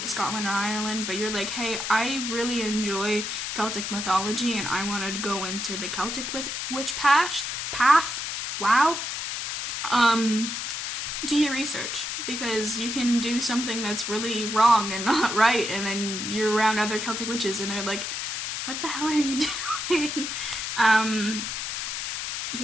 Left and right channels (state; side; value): noise; left; hiss, 4 dB below the sound